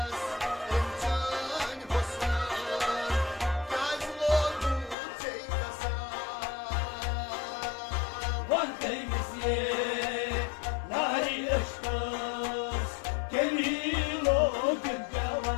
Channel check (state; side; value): drops out; right; at 5.0 s